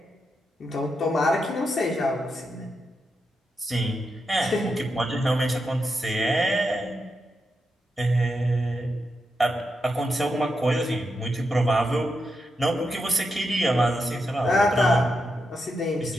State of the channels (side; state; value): both; normal; correlation 0.85